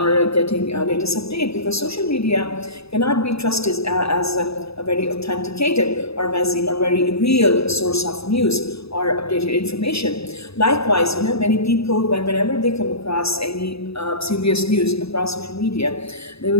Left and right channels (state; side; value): late; right; 0.78 ms